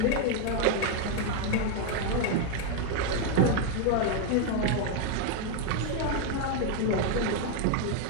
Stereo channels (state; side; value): different; both; correlation 0.01